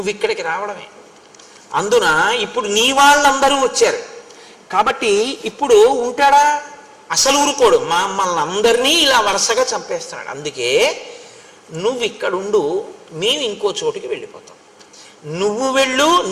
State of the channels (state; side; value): identical; both; correlation 1.00